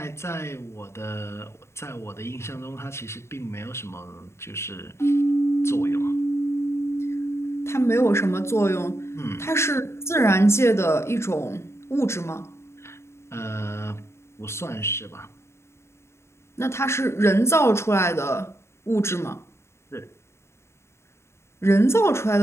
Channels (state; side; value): late; right; 0.13 ms